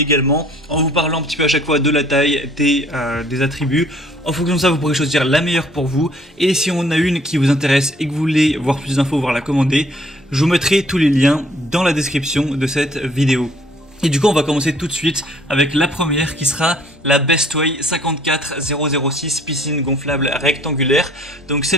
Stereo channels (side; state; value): both; normal; correlation 0.59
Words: en vous parlant un petit peu à chaque fois de la taille, des attributs. En fonction de ça, vous pourrez choisir la meilleure pour vous. Et si on a une qui vous intéresse et que vous voulez voir plus d'infos, voire la commander, je vous mettrai tous les liens dans la description de cette vidéo. Et du coup, on va commencer tout de suite avec la première qui sera la Bestway 54006 piscine gonflable rectangulaire. Donc